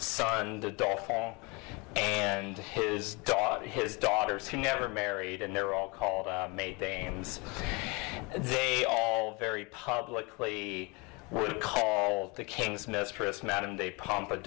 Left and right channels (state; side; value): quieter; right; 28.5 dB